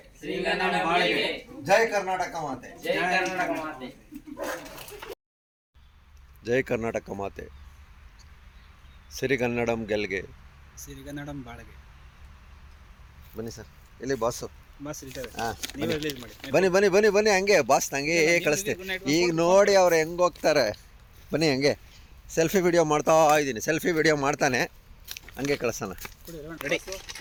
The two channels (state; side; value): identical; both; correlation 1.00